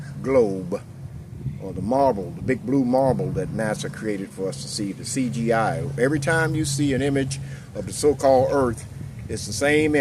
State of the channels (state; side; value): identical; both; correlation 1.00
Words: globe, or the marble, the big blue marble that NASA created for us to see, the CGI. Every time you see an image of the so-called Earth, it's the same